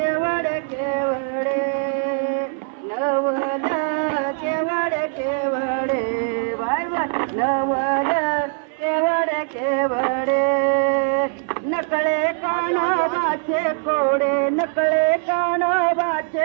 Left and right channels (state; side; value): silent; left; 61 dB below the other